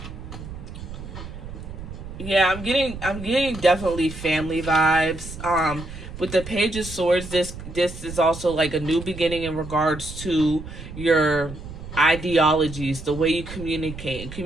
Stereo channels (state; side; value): noise; right; rumble, 11 dB below the sound